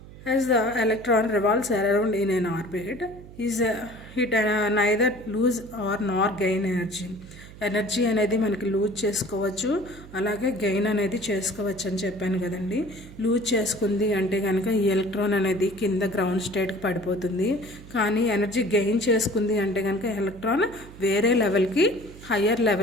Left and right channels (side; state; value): right; noise; hum, 17 dB below the sound